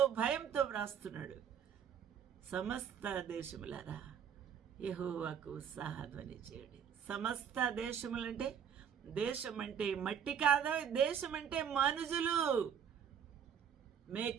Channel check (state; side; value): quieter; left; 8.0 dB